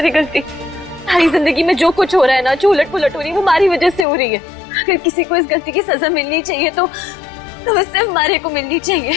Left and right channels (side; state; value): right; drops out; at 4.0 s